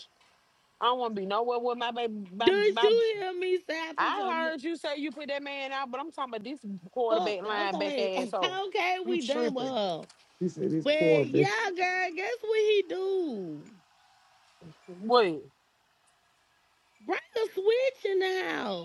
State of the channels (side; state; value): both; identical; correlation 1.00